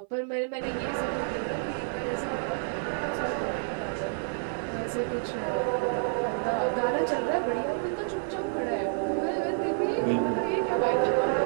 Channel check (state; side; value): silent; left; 59 dB below the other